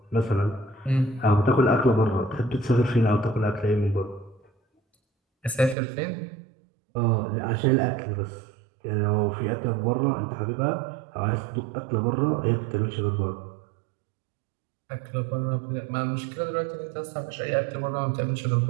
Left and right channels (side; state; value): left; drops out; at 5.8 s